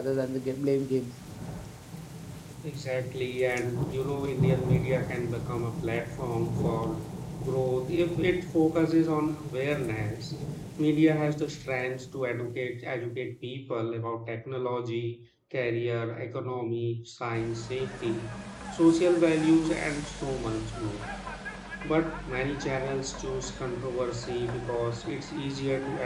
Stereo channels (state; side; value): identical; both; correlation 1.00